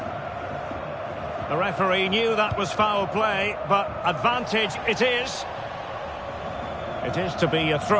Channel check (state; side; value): identical; both; correlation 1.00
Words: The referee knew that was foul play, but advantage it is. It is to be a